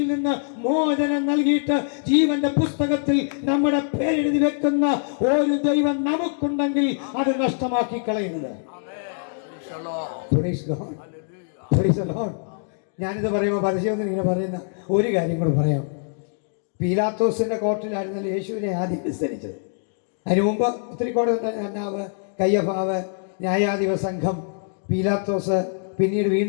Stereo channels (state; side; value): silent; right; digital silence